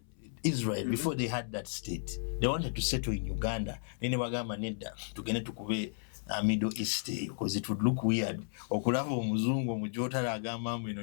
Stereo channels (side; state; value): right; silent; 55 dB below the other